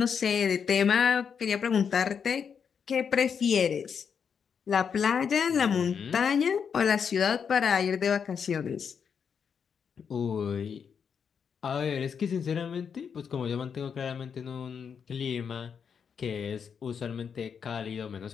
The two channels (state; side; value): quieter; right; 6.8 dB